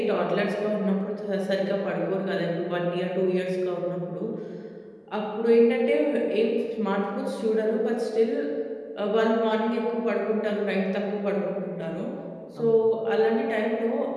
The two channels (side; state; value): both; identical; correlation 1.00